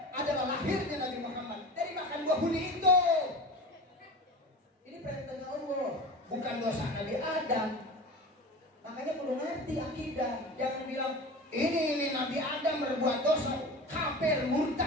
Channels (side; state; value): both; normal; correlation 0.33